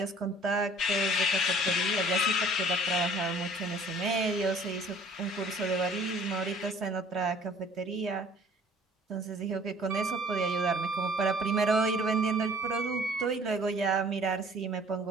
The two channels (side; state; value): both; normal; correlation 0.53